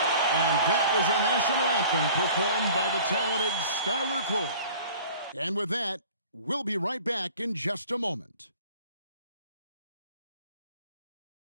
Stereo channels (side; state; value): both; inverted; correlation -0.46